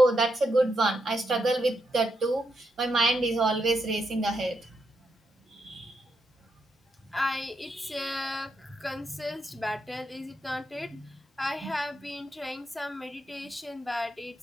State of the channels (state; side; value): normal; both; correlation 0.82